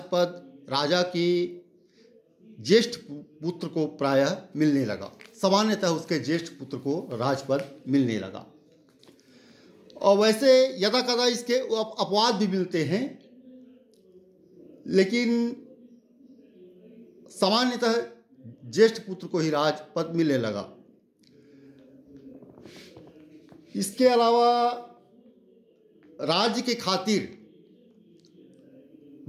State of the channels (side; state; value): both; identical; correlation 1.00